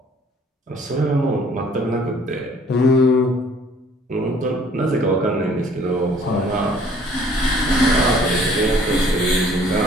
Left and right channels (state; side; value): normal; both; correlation 0.57